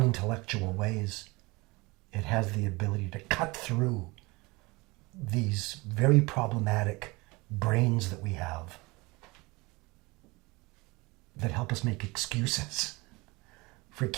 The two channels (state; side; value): quieter; left; 24.1 dB